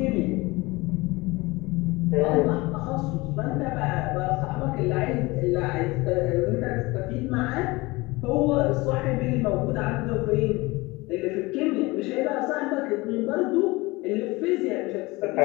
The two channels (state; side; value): quieter; right; 22.6 dB